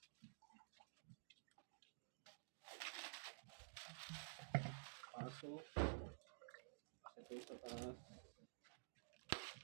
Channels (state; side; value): silent; left; digital silence